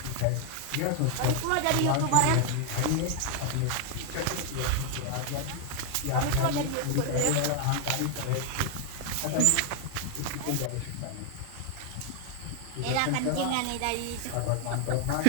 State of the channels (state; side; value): different; both; correlation 0.00